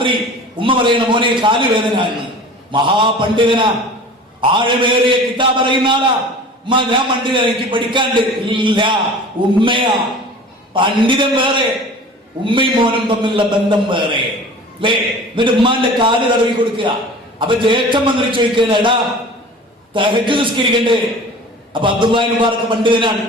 ഉമ്മ പറയണ മോനെ കാല് വേദന എന്ന്. മഹാപണ്ഡിതനാ, ആഴമേറിയ കിതാബ് അറിയുന്ന ആളാ. ഉമ്മ ഞാൻ പണ്ഡിതൻ, എനിക്ക് പഠിക്കാണ്ട്. ഇല്ല, ഉമ്മയാ പണ്ഡിതൻ വേറെ, ഉമ്മയും മോനും തമ്മിലുള്ള ബന്ധം വേറെ അല്ലേ. എന്നിട്ട് ഉമ്മാന്റെ കാല് തടവി കൊടുക്കുക. അപ്പൊ ജ്യേഷ്ഠൻ വന്നിട്ട് ചോദിക്കുകയാണ്, എടാ തഹജ്ജുദ് നിസ്കരിക്കണ്ടേ? അപ്പൊ അബ്ദുല്ലാഹി മുബാറക് പണ്ഡിതനാണ്,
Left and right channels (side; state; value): both; normal; correlation 0.41